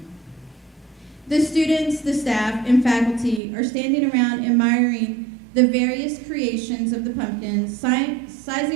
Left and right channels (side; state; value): left; drops out; at 3.4 s